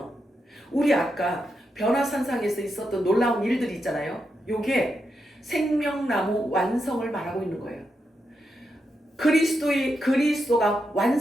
우리 아까 변화산상에서 있었던 놀라운 일들이 있잖아요. 요게 생명나무 완성을 말하고 있는 거예요. 그리스도가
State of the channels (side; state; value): both; normal; correlation 0.85